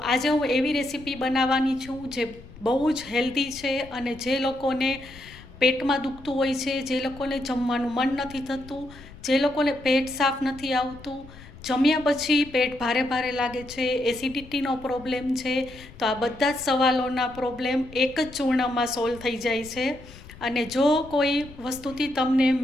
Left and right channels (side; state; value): left; noise; rumble, 19 dB below the sound